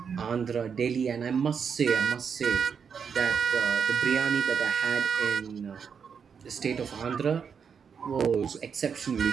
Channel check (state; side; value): quieter; left; 6.6 dB